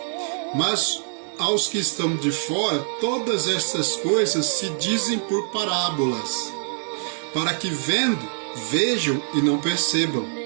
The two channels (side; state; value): left; silent; digital silence